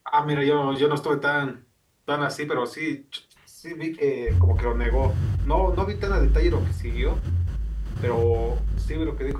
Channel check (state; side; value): identical; both; correlation 1.00